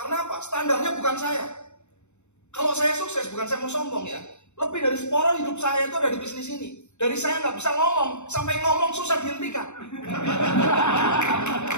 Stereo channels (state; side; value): late; right; 0.82 ms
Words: apa? Standarnya bukan saya. Kalau saya sukses, bukan saya mau sombong ya. Lebih dari separuh hidup saya itu ada di bisnis ini. Dari saya nggak bisa ngomong, sampai ngomong susah dihentikan.